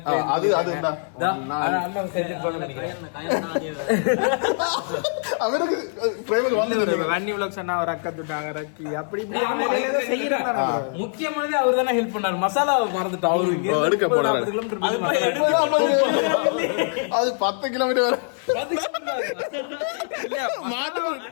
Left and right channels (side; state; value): right; silent; 63 dB below the other